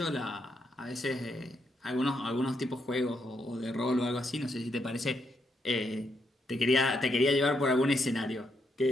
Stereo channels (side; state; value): both; normal; correlation 0.78